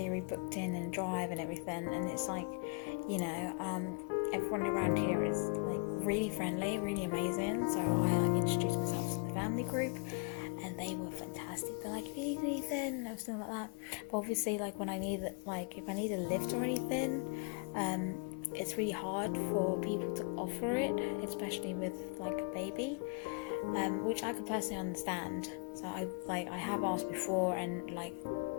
booked in and drive and everything. And it's like, everyone around here is like really friendly, really amazing. So I introduced myself to the family group, and they were fantastic. They're like, if you need anything and everything like that. But obviously, like when I need, if I need a lift or anything, it's really hard for people to offer it, especially with like a baby, which I could personally understand. So I have asked before, and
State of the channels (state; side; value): quieter; right; 35.3 dB